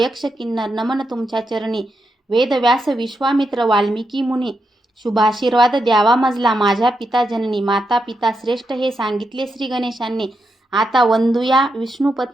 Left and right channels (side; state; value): both; normal; correlation 0.84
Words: किन्नर, नमन तुमच्या चरणी. वेद व्यास विश्वामित्र वाल्मिकी मुनी, शुभाशीर्वाद द्यावा मजला माझ्या पिता जननी. माता पिता श्रेष्ठ हे सांगितले श्री गणेशांनी. आता वंदूया